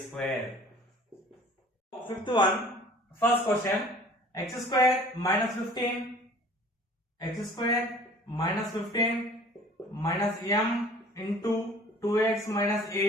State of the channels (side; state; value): both; normal; correlation 0.48